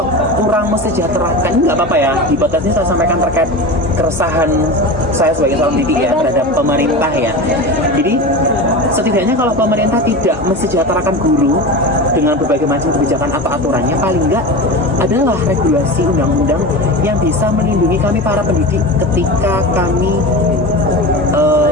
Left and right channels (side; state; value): both; normal; correlation 0.27